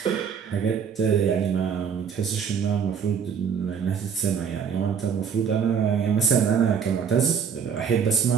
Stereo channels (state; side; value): quieter; left; 7.0 dB